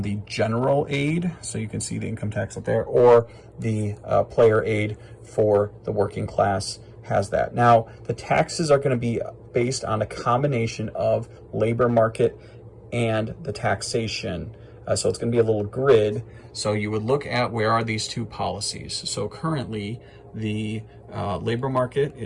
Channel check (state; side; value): identical; both; correlation 1.00